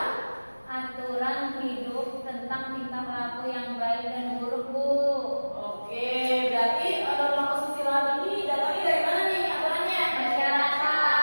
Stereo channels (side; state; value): both; inverted; correlation -1.00